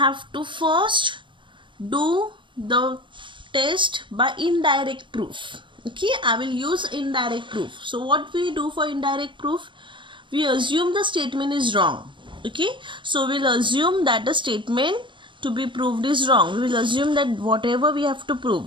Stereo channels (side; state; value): left; late; 0.24 ms